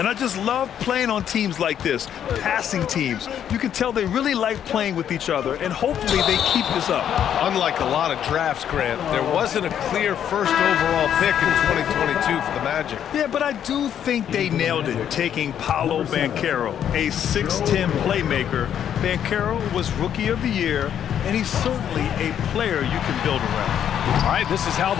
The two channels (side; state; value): right; quieter; 9.5 dB